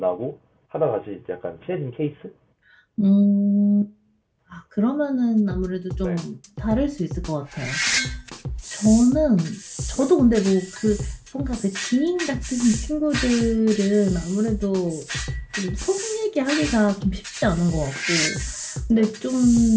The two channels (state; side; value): identical; both; correlation 1.00